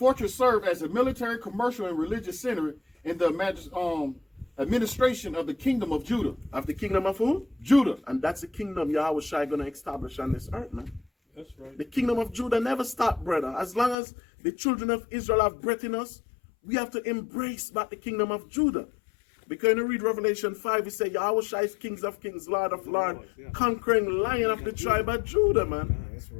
served as a military, commercial, and religious center in the administration of the kingdom of Judah. Of the kingdom of who? Judah. And that's the kingdom Yahushua going to establish on this earth, man. That's right. The kingdom of Judah never stopped, brother. As long as the children of Israel have breath in us, we have to embrace back the kingdom of Judah. Because when you read Revelation 5, it says Yahushua is kings of kings, Lord of lords, conquering lion of the tribe of Judah, man. That's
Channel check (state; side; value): drops out; right; at 14.0 s